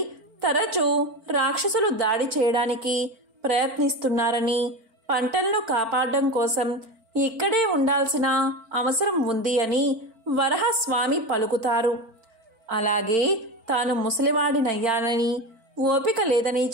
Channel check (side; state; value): left; late; 4.4 ms